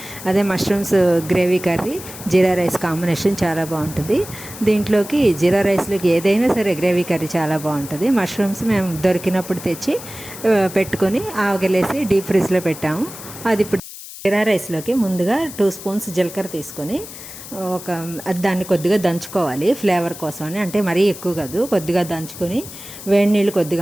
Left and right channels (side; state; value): left; noise; hiss, 13 dB below the sound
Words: అదే మష్రూమ్స్ గ్రేవీ కర్రీ జీరా రైస్ కాంబినేషన్ చాలా బాగుంటుంది. దీంట్లోకి జీరా రైస్లోకి ఏదైనా సరే గ్రేవీ కర్రీ చాలా బాగుంటుంది. మష్రూమ్స్ మేము దొరికినప్పుడు తెచ్చి పెట్టుకొని ఆవగలేసి డీప్ ఫ్రిడ్జ్లో పెట్టాము. అది ఇప్పుడు జీరా రైస్లోకి ముందుగా 2 స్పూన్స్ జీలకర్ర తీసుకొని దాన్ని కొద్దిగా దంచుకోవాలి ఫ్లేవర్ కోసం అని. అంటే మరీ ఎక్కువ కాదు, కొద్దిగా దంచుకొని వేడి నీళ్ళు